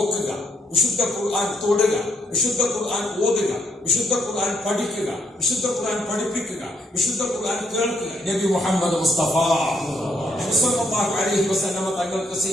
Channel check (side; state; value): both; normal; correlation 0.73